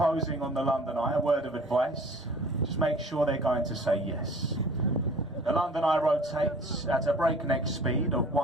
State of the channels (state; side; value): normal; both; correlation 0.48